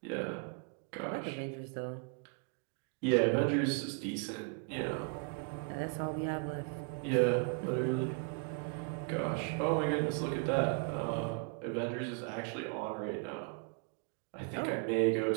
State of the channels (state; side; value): quieter; left; 39.4 dB